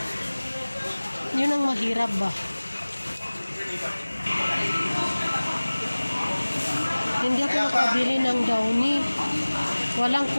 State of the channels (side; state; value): both; inverted; correlation -1.00